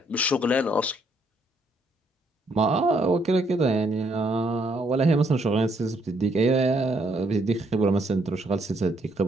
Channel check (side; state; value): both; normal; correlation 0.71